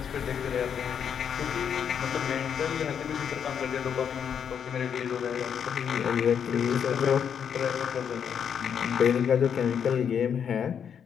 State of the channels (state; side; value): quieter; right; 7.8 dB